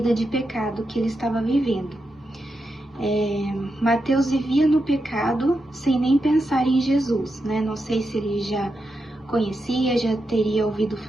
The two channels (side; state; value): both; normal; correlation 0.87